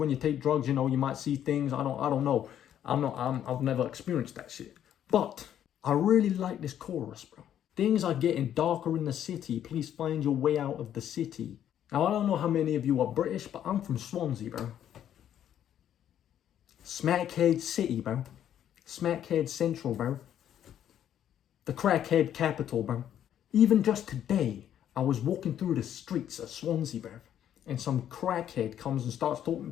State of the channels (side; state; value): right; quieter; 10.3 dB